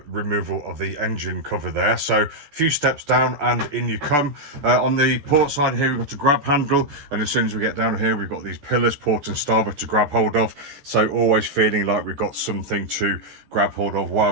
removal of the engine cover there. So a few steps down and in you come. On the port side here, we've got a grab handle, and as soon as we get down here, we've got these pillars, port and starboard, to grab hold of. So always feeling like we've got something to grab hold of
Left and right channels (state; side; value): late; left; 14 ms